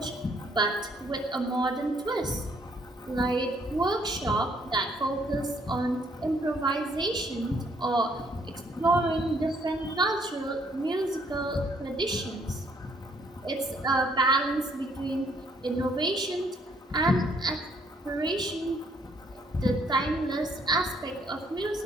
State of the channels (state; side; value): normal; both; correlation 0.67